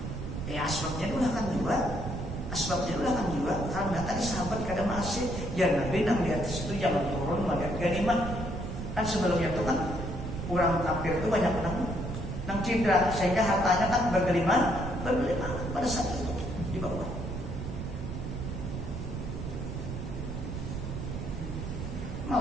Asbabnya dulu akan juga. Karena tadi sahabat kada masih. Ya Nabi nang di atas itu jangan turun melihat ganimah. Kan sebelumnya itu kan orang kafir itu banyak nang cedera sehingga hartanya kan bergelimang pada saat itu di bawah.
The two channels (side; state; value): right; noise; rumble, 6 dB below the sound